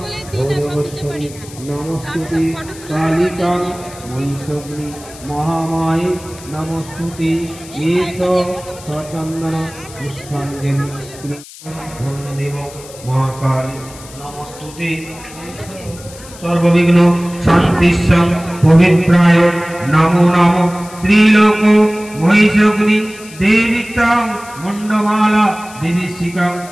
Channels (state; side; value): noise; left; hiss, 18 dB below the sound